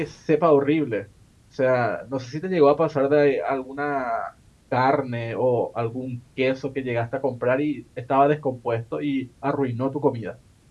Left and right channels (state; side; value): identical; both; correlation 1.00